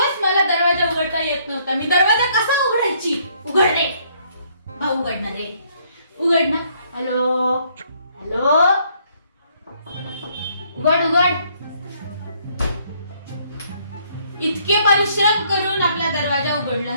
मला दरवाजा उघडता येत नव्हता. मी दरवाजा कसा उघडायची? उघड रे भाऊ, उघडणार रे, उघड ना. हॅलो हॅलो, उघड उघड. इतके परिश्रम करून आपला दरवाजा उघडला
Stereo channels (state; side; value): inverted; both; correlation -0.66